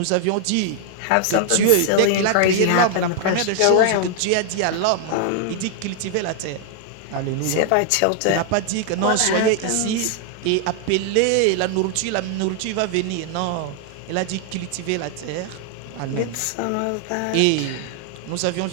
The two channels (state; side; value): different; both; correlation 0.00